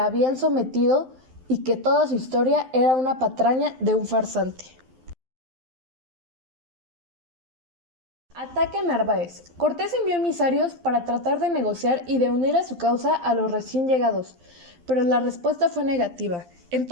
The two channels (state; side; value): late; left; 12 ms